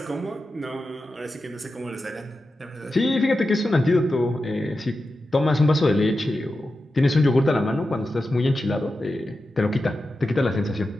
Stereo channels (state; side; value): normal; both; correlation 0.91